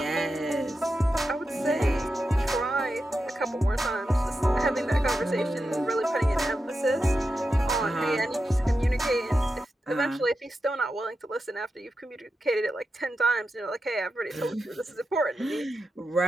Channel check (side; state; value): both; normal; correlation 0.89